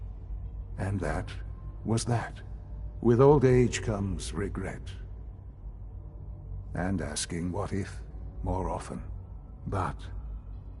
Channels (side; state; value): both; identical; correlation 1.00